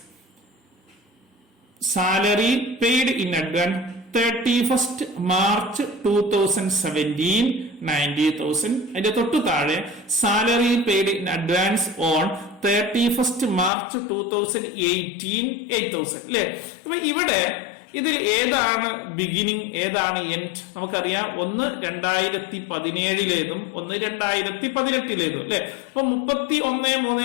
31st March 2017 90,000. അതിന്റെ തൊട്ടു താഴെ salary paid in advance on 31st March 2018 8,000 അല്ലെ. അപ്പൊ ഇവിടെ ഇതിൽ ഏതാണ് ബിഗിനിങ് ഏതാണ് എൻഡ്? നമുക്കറിയാം, ഒന്ന് 2017-ലേതും ഒന്ന് 2018-ലേതും അല്ലെ. അപ്പൊ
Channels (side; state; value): right; drops out; at 13.7 s